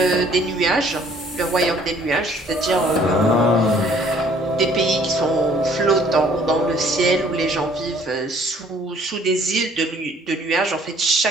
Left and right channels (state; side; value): normal; both; correlation 0.58